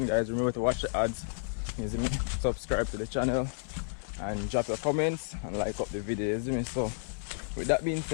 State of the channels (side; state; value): right; silent; 57 dB below the other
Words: guys. Remember to watch the ads, you see me? Subscribe to the channel and drop your comments and like up the video, you see me? So with that being